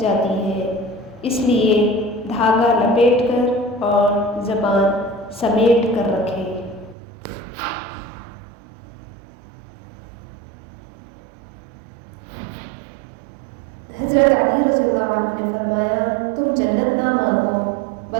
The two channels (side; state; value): left; drops out; at 7.0 s